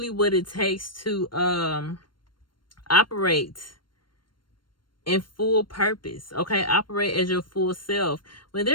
what it takes to operate in full purpose. Okay, operate as your full self. When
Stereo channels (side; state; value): right; late; 0.72 ms